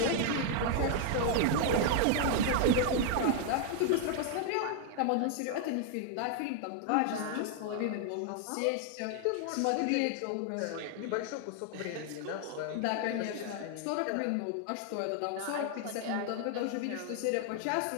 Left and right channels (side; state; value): both; different; correlation 0.00